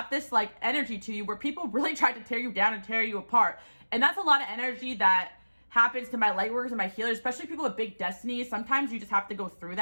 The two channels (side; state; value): both; inverted; correlation -1.00